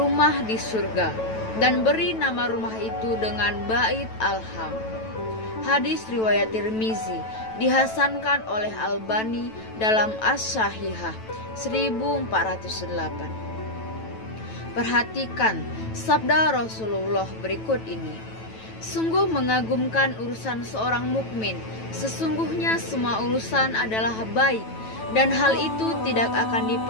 di surga, dan beri nama rumah itu dengan Bait Alham. Hadis riwayat Tirmizi, dihasankan oleh Albani dalam As-Sahihah 1408. Perhatikan sabda Rasulullah berikut ini. Sungguh mengagumkan urusan seorang mukmin. Sesungguhnya semua urusan adalah baik, dan hal itu tidak akan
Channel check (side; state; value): right; late; 9.1 ms